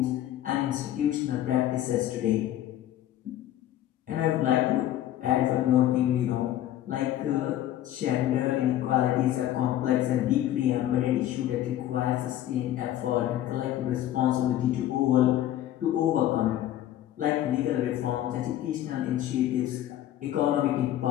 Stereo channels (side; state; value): right; quieter; 12.7 dB